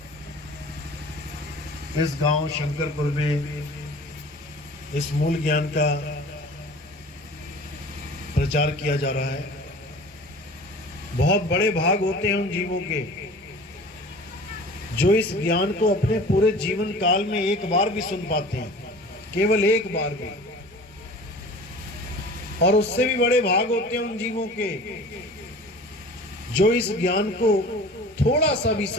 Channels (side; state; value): both; normal; correlation 0.42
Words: इस गांव शंकरपुर में इस मूल ज्ञान का प्रचार किया जा रहा है। बहुत बड़े भाग होते हैं उन जीवों के जो इस ज्ञान को अपने पूरे जीवन काल में एक बार भी सुन पाते हैं, केवल एक बार भी। और उससे भी बड़े भाग होते हैं उन जीवों के जो इस ज्ञान को थोड़ा सा भी